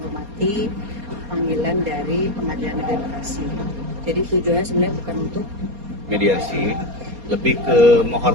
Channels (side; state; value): left; late; 4.3 ms